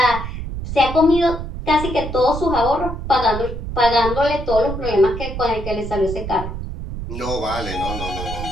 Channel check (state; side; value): noise; right; rumble, 7 dB below the sound